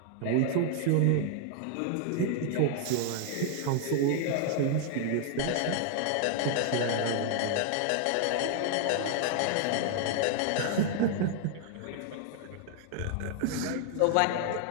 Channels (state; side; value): different; both; correlation 0.00